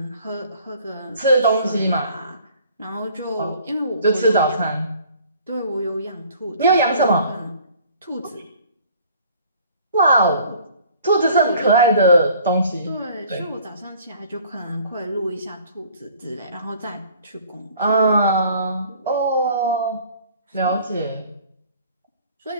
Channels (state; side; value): inverted; both; correlation -0.53